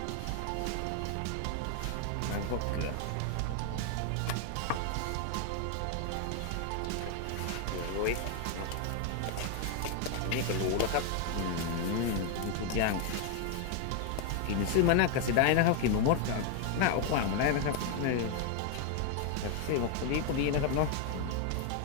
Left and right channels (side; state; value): both; different; correlation 0.01